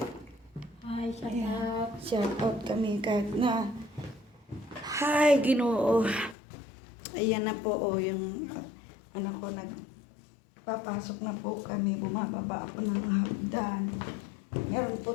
Hi, shout out. Shout out kami kahit na. Hi, Ginoo. Ayan na po, yung anak ko nagpapasok na po kami. Bumababa ako ng hagdan. Meron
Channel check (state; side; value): drops out; right; at 6.4 s